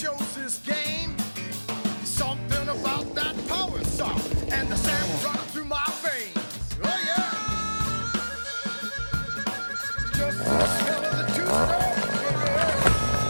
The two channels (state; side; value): inverted; both; correlation -1.00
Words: chose this game. Something about that power song and the sound running through my veins. Oh yeah, just the smell of the two-stone.